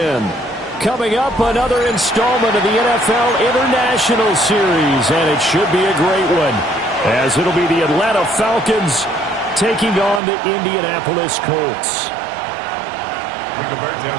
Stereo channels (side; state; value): left; drops out; at 10.2 s